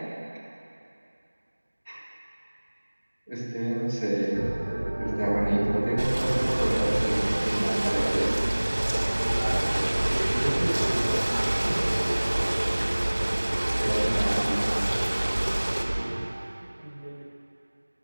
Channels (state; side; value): inverted; both; correlation -1.00